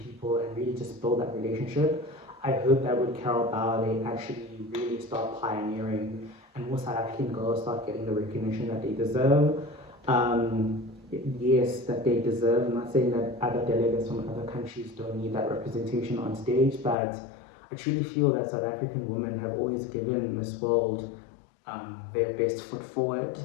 and really just build that relationship, I hope that with Carol Bauer they actually really start pioneering and more South African girls start getting the recognition that they deserve. Um, yes, that they deserve. I'm not saying that other delegates from other countries don't need that representation on stage, but I truly feel that South African women have always given Miss World their best foot forward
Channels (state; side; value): drops out; right; at 16.9 s